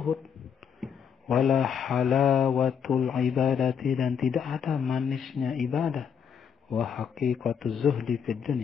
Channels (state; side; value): quieter; right; 7.4 dB